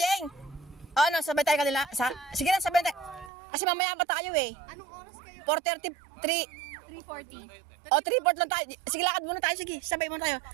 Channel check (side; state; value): left; drops out; at 3.3 s